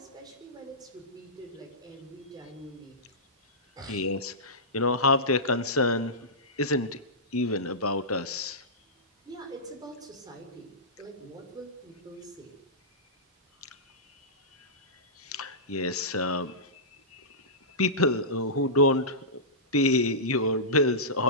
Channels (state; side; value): normal; both; correlation -0.17